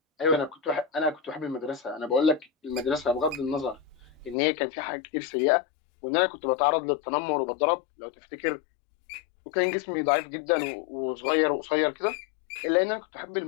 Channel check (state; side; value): drops out; right; at 4.4 s